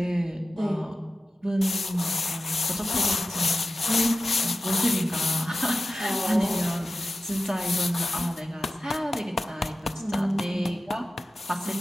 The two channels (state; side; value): normal; both; correlation 0.93